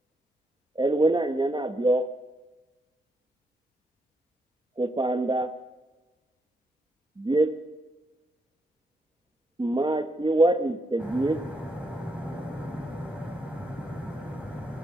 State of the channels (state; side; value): normal; both; correlation 0.79